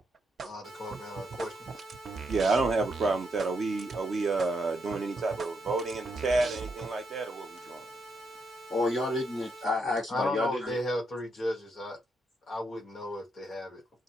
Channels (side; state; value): both; normal; correlation 0.79